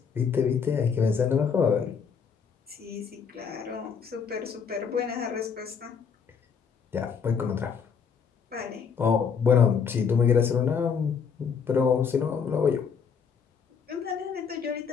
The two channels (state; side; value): quieter; right; 6.4 dB